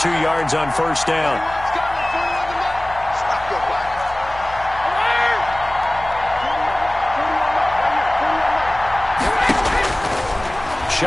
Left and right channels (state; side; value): noise; left; hum, 17 dB below the sound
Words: 2 yards on 1st down.